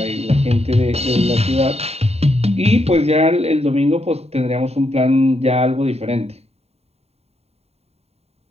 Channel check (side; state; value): left; late; 0.30 ms